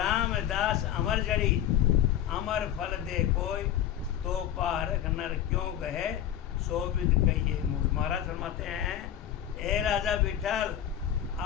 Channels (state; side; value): quieter; right; 10.8 dB